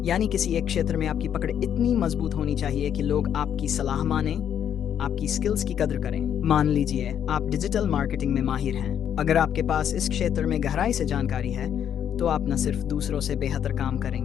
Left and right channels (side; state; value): right; quieter; 9.2 dB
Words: यानी किसी एक क्षेत्र में आपकी पकड़ इतनी मजबूत होनी चाहिए कि लोग आपकी सलाह माने, आपकी स्किल्स की कदर करें। मान लीजिए आप डिजिटल मार्केटिंग में माहिर हैं। अगर आपके पास इस क्षेत्र में गहराई से जानकारी है, तो आप न सिर्फ दूसरों से बेहतर काम